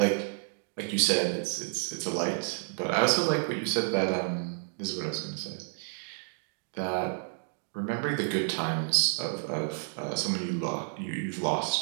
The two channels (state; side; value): silent; left; 58 dB below the other